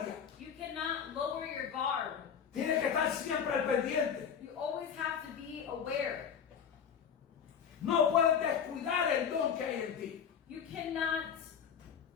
You cannot lower your guard. Tienes que estar siempre al pendiente. You always have to be aware. No puedes descuidar el don que hay en ti. You cannot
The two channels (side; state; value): right; quieter; 7.5 dB